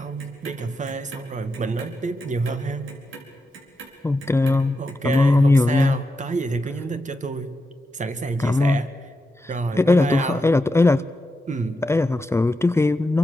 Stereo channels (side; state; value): both; normal; correlation 0.87